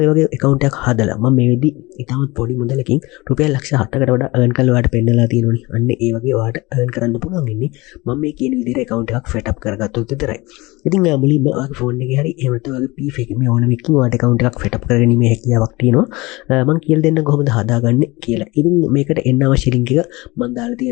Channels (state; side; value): quieter; right; 22.4 dB